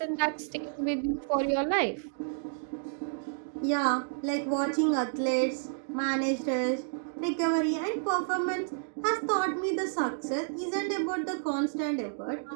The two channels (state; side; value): silent; left; digital silence